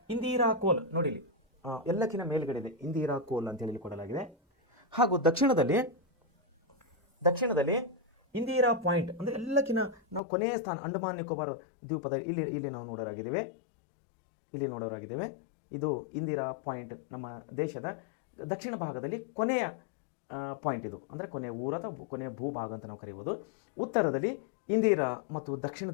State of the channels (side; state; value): right; drops out; at 10.2 s